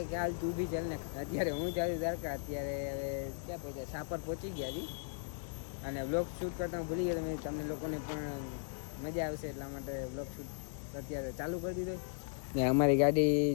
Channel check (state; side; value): silent; right; digital silence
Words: કે હાલ તું બી ચાલ ને. અત્યારે હું જાઉં છું દ્વારકા. અત્યારે હવે ક્યાં પહોંચ્યા? સાપર પહોંચી ગયા છીએ અને વ્લોગ શૂટ કરતા હું ભૂલી ગયો. તમને લોકોને પણ મજા આવશે એટલા માટે વ્લોગ શૂટ અત્યારે ચાલુ કરી દીધો. ને અમારી ગાડી